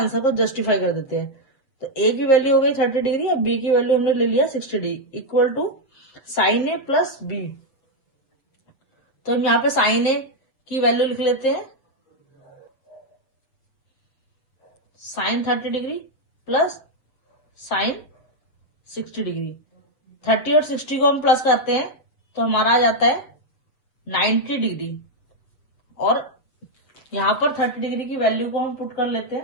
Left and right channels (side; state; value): right; late; 7.7 ms